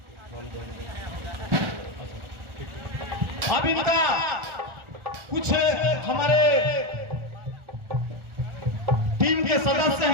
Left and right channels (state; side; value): late; left; 1.4 ms